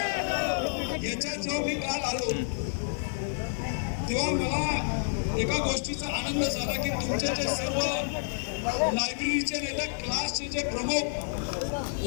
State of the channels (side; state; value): right; silent; digital silence